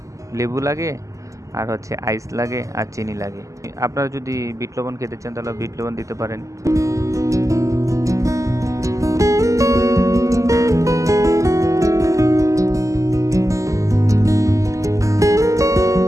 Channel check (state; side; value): late; left; 0.16 ms